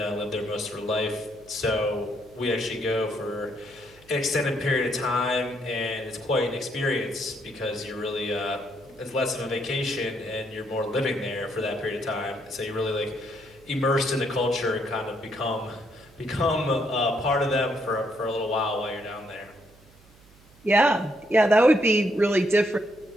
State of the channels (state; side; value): noise; right; hum, 27 dB below the sound